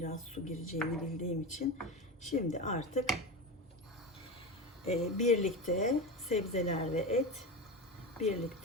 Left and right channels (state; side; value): normal; both; correlation 0.22